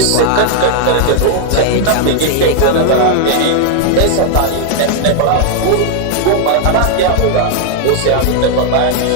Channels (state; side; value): different; both; correlation 0.00